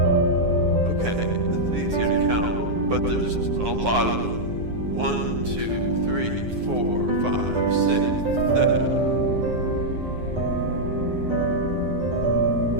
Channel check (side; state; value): left; late; 9.6 ms